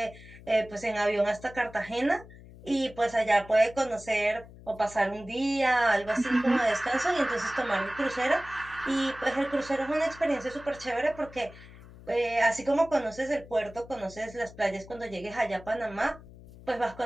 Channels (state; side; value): noise; left; hum, 19 dB below the sound